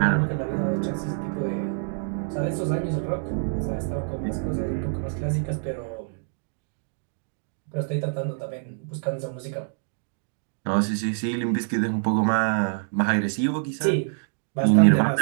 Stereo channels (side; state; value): left; silent; digital silence